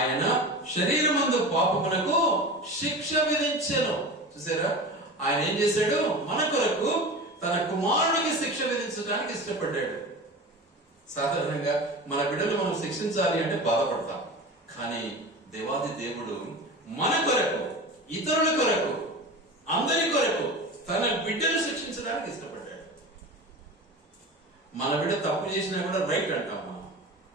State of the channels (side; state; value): both; normal; correlation 0.31